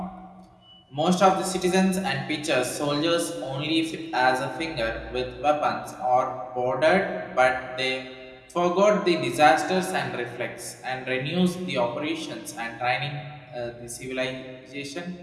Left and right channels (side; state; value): both; identical; correlation 1.00